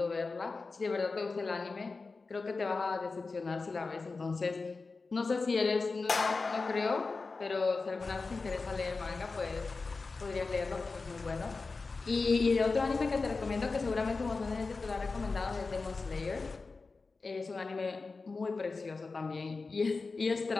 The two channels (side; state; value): right; quieter; 4.0 dB